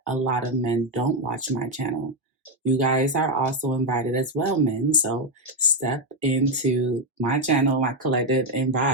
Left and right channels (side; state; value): both; normal; correlation 0.05